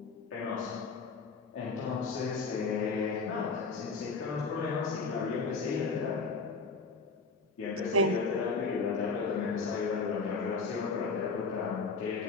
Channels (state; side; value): quieter; right; 4.3 dB